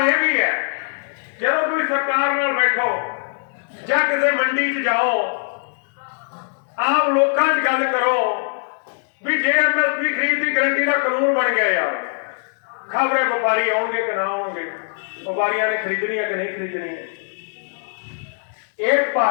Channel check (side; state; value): right; silent; 65 dB below the other